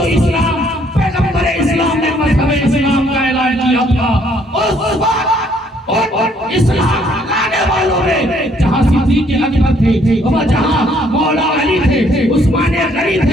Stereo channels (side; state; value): both; normal; correlation 0.66